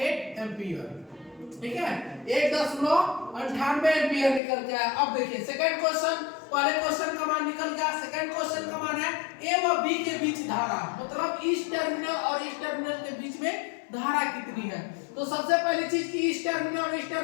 एम्पीयर। ठीक है, 1.98 एम्पीयर निकल गया। अब देखिए सेकंड क्वेश्चन, पहले क्वेश्चन का मान निकल गया, सेकंड क्वेश्चन का मान है ए व बी के बीच धारा, मतलब इस टर्मिनल और इस टर्मिनल के बीच में धारा कितनी है। तो सबसे पहली चीज कि इस टर्मिनल और इस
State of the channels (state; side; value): drops out; right; at 4.4 s